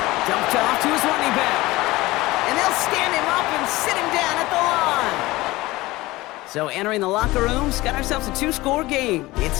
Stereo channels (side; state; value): right; quieter; 19.5 dB